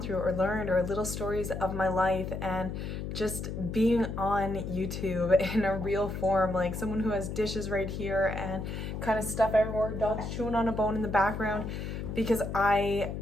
through or learned or little stories of my life, and just being on YouTube in a real form, like someone who has dishes right here and kind of stuff everywhere, dogs chewing on a bone in the background, because I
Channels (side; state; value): left; noise; hum, 5 dB below the sound